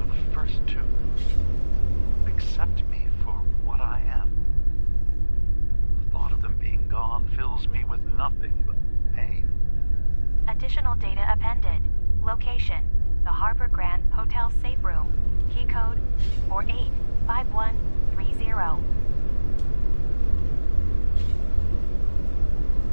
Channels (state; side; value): inverted; both; correlation -1.00